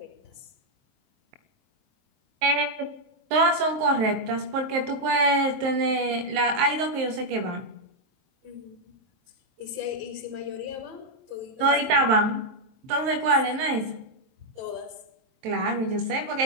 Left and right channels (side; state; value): left; late; 23 ms